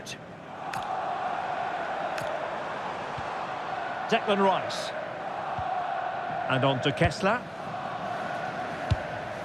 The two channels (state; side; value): identical; both; correlation 1.00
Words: Declan Rice. And on to Kessler.